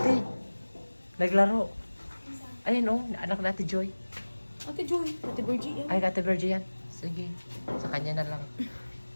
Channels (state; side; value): inverted; both; correlation -1.00